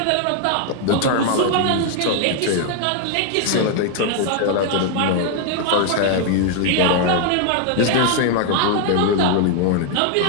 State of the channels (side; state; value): both; different; correlation 0.00